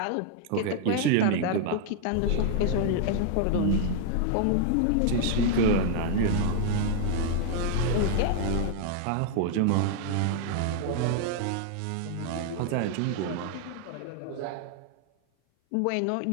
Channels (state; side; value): different; both; correlation 0.00